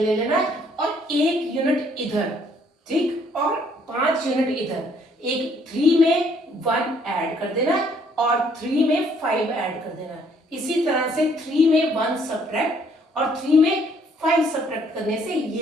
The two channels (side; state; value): both; normal; correlation 0.65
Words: ले लेना है, और 1 यूनिट इधर, ठीक, और 5 यूनिट इधर, एक 3 में 1 ऐड कर देना है और 3 में 5 ऐड कर देना है। इसी तरह से 3 में 1 सब्ट्रैक्ट और 3 में 5 सब्ट्रैक्ट करने से